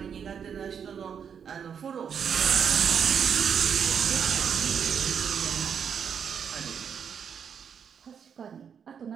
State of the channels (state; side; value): quieter; left; 7.4 dB